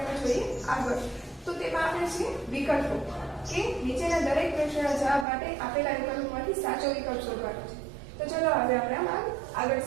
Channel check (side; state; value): left; drops out; at 5.2 s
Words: જોઈએ આગળ તો તેમાં આપણે છે વિકલ્પો કે નીચેના દરેક પ્રશ્નના જવાબ માટે આપેલા વિકલ્પોમાંથી સાચો વિકલ્પ શોધવાનો છે તો ચલો હવે આપણે આગળ